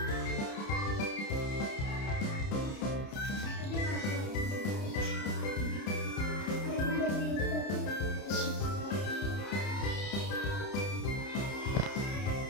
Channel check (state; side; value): late; right; 30 ms